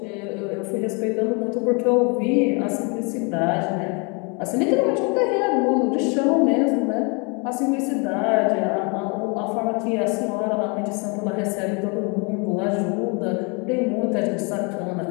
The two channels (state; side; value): quieter; right; 32.7 dB